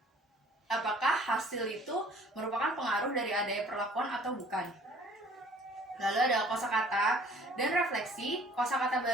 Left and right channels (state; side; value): normal; both; correlation 0.53